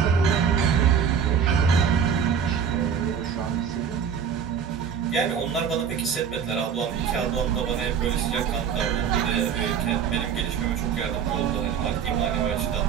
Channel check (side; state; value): left; quieter; 7.4 dB